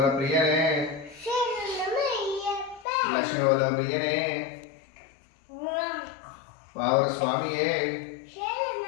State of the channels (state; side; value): drops out; right; at 2.9 s